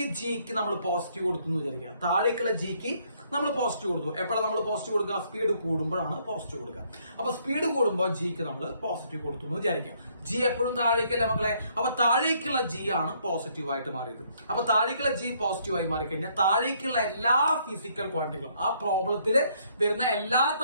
ജിക്ക് നമ്മൾ പോസിറ്റീവ് കൊടുത്തു എന്ന് വിചാരിക്കുക. താഴേക്കുള്ള ജിക്ക് നമ്മൾ പോസിറ്റീവ് കൊടുത്തു. എപ്പോഴാണ് നമ്മൾ പോസിറ്റീവ് കൊടുക്കുക? സ്പീഡ് കൂടുമ്പോഴാണ് പോസിറ്റീവ് കൊടുക്കുക. അപ്പൊ സ്പീഡ് കൂടുമ്പോൾ ജിക്ക് നമ്മൾ പോസിറ്റീവ് കൊടുത്തു എന്ന് വിചാരിക്കാം. ജി എപ്പോഴും താഴേക്കല്ലേ മക്കളെ. അപ്പൊ താഴേക്കുള്ള ജി ആണ് പോസിറ്റീവ് ആയിട്ട് മാറിയത്. അപ്പൊ താഴേക്കുള്ള ജി പോസിറ്റീവ് ആയി മാറിക്കഴിഞ്ഞാൽ താഴേക്കുള്ള എല്ലാ ഫിസിക്കൽ ക്വാണ്ടിറ്റികളും, ആ പ്രോബ്ലത്തിൽ വരുന്ന എല്ലാ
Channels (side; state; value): both; inverted; correlation -0.68